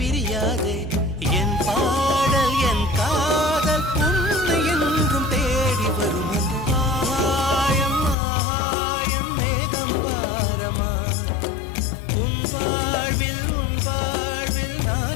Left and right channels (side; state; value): right; drops out; at 8.2 s